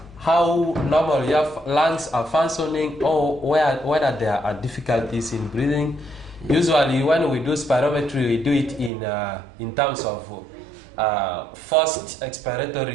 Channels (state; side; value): drops out; left; at 8.9 s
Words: how normal your lungs are functioning, or whether there are difficulties in breathing. Usually, when we do spirometry, we do it in terms of first